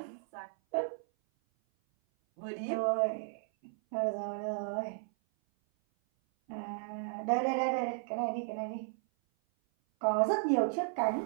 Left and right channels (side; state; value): left; silent; 55 dB below the other